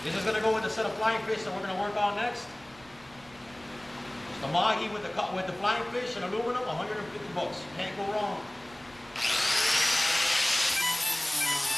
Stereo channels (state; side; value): noise; right; rumble, 25 dB below the sound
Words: This is gonna go with the set of flying fish that we're gonna work on next. It's the mahi with the flying fish and aluminum, 150 bucks. Can't go wrong.